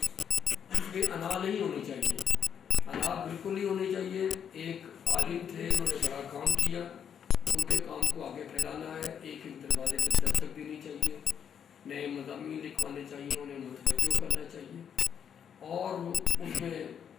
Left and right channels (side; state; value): right; quieter; 8.1 dB